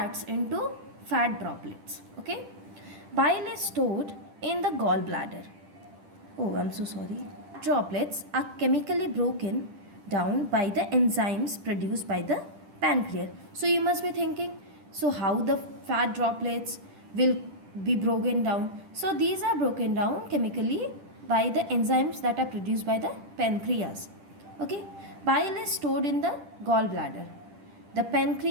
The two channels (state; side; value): late; left; 10 ms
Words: into fat droplets. Okay. Bile is stored in the gallbladder. Oh, I'm so sorry. Droplets are chemically broken down by the enzymes produced by the pancreas. So you must be thinking, so how the fat droplets will be broken down? So these are broken down chemically by the enzymes that are produced by the pancreas. Okay. Bile is stored in the gallbladder. The